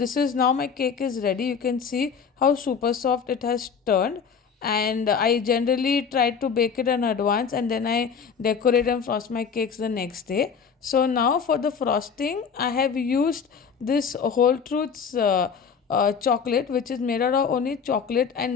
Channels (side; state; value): right; quieter; 6.3 dB